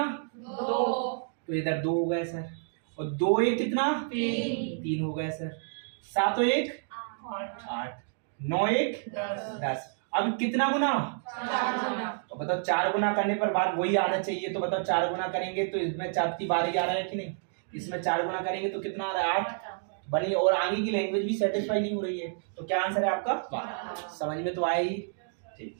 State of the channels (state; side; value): silent; left; digital silence